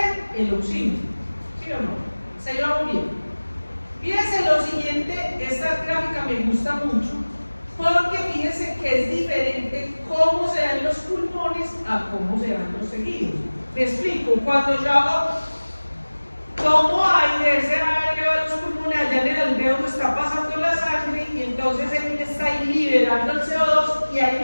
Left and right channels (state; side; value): inverted; both; correlation -1.00